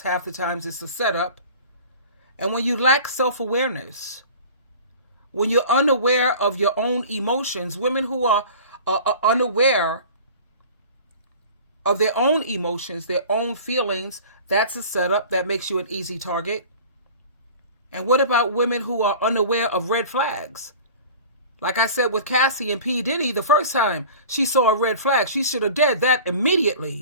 half the times is a setup. And when you lack self-awareness, when you're unaware of your own emotions, women who are unaware of their own emotions, their own feelings, that's a setup that makes you an easy target. And what about women who are unaware of red flags? Like I said with Cassie and P. Diddy, the first time she saw a red flag, she should have did that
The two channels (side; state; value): both; inverted; correlation -0.41